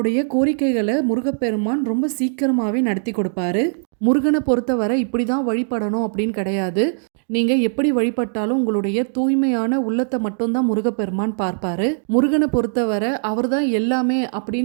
கோரிக்கைகளை முருகப்பெருமான் ரொம்ப சீக்கிரமாகவே நடத்தி கொடுப்பாரு. முருகனை பொறுத்தவரை இப்படி தான் வழிபடணும் அப்படின்னு கிடையாது. நீங்கள் எப்படி வழிபட்டாலும் உங்களுடைய தூய்மையான உள்ளத்தை மட்டும்தான் முருகப்பெருமான் பார்ப்பாரு. முருகனை பொறுத்தவரை அவர் தான் எல்லாமே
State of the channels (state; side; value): silent; left; digital silence